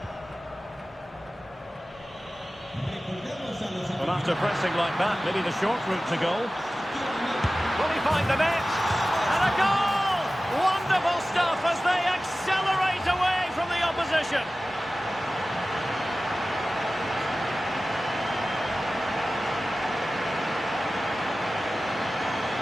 Well, after pressing like that, maybe the short route to goal. Will he find the net? And a goal! Wonderful stuff as they accelerate away from the opposition.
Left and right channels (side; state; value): both; normal; correlation 0.96